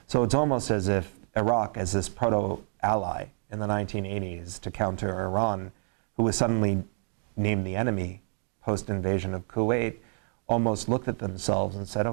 So it's almost as if Iraq, as this proto-ally in the 1980s to counter Iran, who was suddenly named the enemy post-invasion of Kuwait, almost looked at themselves and said,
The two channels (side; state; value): left; silent; 59 dB below the other